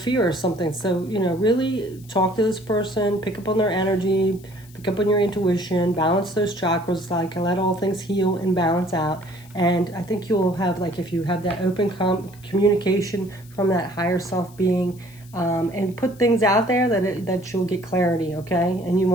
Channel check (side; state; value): left; noise; hiss, 25 dB below the sound